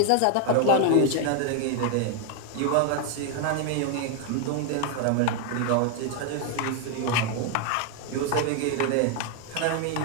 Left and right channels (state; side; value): different; both; correlation 0.01